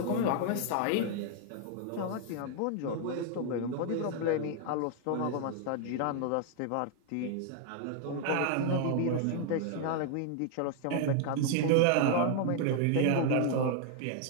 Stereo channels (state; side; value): different; both; correlation 0.00